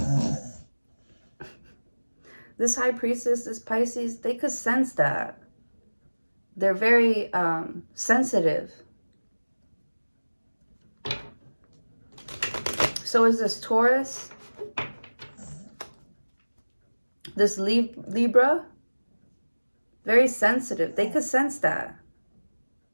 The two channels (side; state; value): both; inverted; correlation -1.00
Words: This High Priestess, this Pisces, they could sense that. They're very sensitive. So is this Taurus. This Libra. Very sensitive. They could sense that.